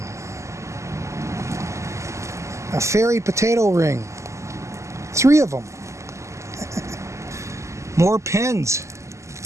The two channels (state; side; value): late; left; 0.14 ms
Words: A fairy potato ring. 3 of them. More pins.